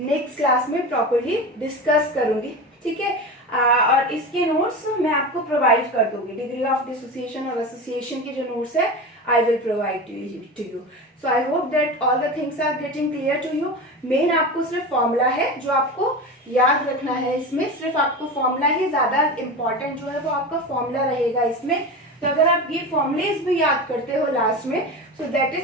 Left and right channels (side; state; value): both; normal; correlation 0.27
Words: क्लास में प्रॉपरली डिस्कस करूंगी, ठीक है। और इसके नोट्स मैं आपको प्रोवाइड कर दूंगी। डिग्री ऑफ डिसोसिएशन और एसोसिएशन के जो नोट्स है I will provide to you. So I hope that all the things are getting clear to you. Main आपको सिर्फ फॉर्मूला है जो आपको याद रखना है, इसमें सिर्फ आपको फॉर्मूला ही ज्यादा इम्पोर्टेंट जो है वो आपका फॉर्मूला रहेगा इसमें। तो अगर आप ये फॉर्मुलेज भी याद करते हो लास्ट में, so that